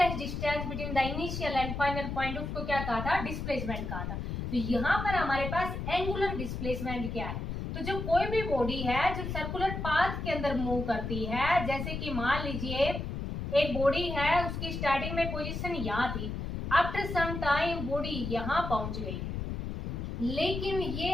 distance between the initial and final point, उसको क्या कहा था, डिस्प्लेसमेंट कहा था। तो यहाँ पर हमारे पास एंगुलर डिस्प्लेसमेंट क्या है, तो जब कोई भी बॉडी है जो सर्कुलर पाथ के अंदर मूव करती है, जैसे कि मान लीजिए एक बॉडी है, उसकी स्टार्टिंग में पोजीशन यहाँ थी, आफ्टर सम टाइम बॉडी यहाँ पहुंच गई, लेकिन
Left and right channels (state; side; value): noise; left; rumble, 4 dB below the sound